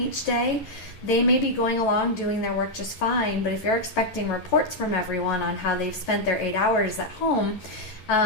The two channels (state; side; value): late; right; 11 ms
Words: day. They may be going along doing their work just fine, but if you're expecting reports from everyone on how they've spent their 8 hours at home,